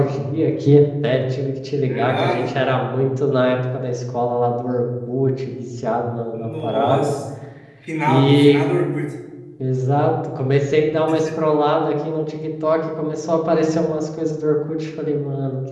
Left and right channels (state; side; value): identical; both; correlation 1.00